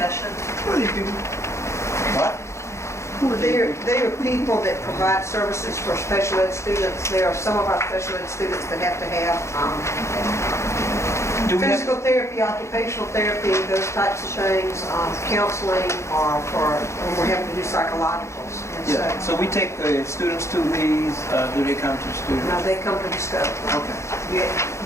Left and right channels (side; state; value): right; late; 0.14 ms